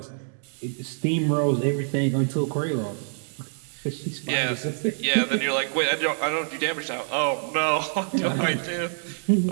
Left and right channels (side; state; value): left; silent; digital silence